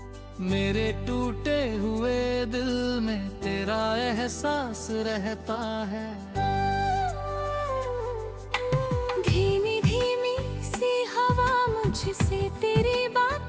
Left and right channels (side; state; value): both; identical; correlation 1.00